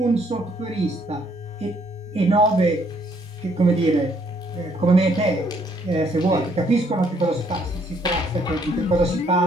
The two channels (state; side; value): normal; both; correlation 0.67